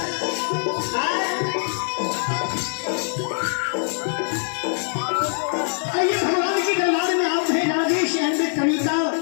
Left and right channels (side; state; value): right; silent; digital silence